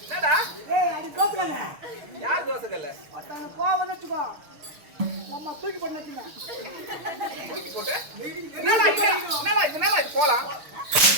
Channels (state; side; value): late; left; 6.6 ms